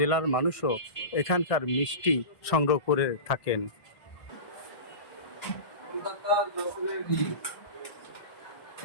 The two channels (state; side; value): late; right; 1.6 ms